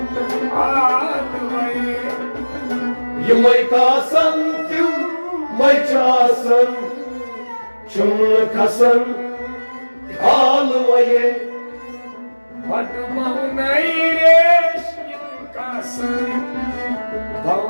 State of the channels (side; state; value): both; inverted; correlation -1.00